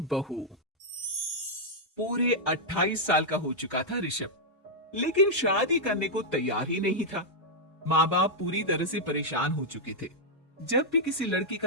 पूरे 28 साल का हो चुका था ऋषभ, लेकिन शादी करने को तैयार ही नहीं था। माँ बाप पूरी तरह से परेशान हो चुके थे। जब भी किसी लड़की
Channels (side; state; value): both; normal; correlation -0.05